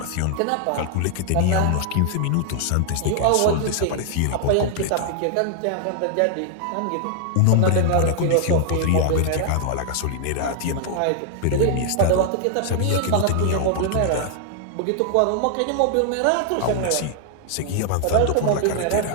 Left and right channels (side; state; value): both; different; correlation 0.00